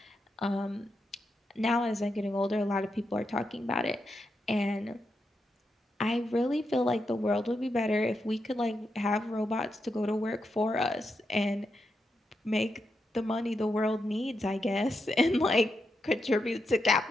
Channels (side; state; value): both; normal; correlation 0.85